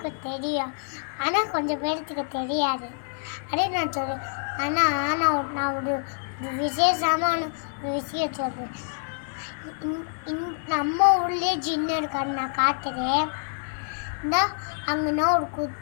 தெரியும். ஆனால் கொஞ்சம் பேருக்கு தெரியாது. அதே நான் சொல்லுவேன். ஆனால் நான் ஒரு விசேஷமான ஒரு விஷயம் சொல்கிறேன். நம்ம ஊர்லேயே ஜின்னு இருக்கான்னு நான் காட்டுறேன். இந்த அங்கேனா ஒரு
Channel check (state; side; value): silent; right; digital silence